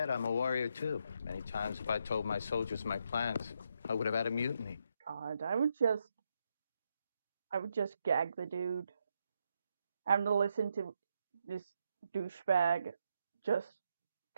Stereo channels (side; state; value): both; inverted; correlation -0.80